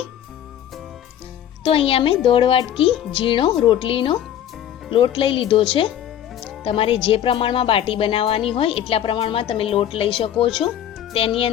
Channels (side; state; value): right; quieter; 10.5 dB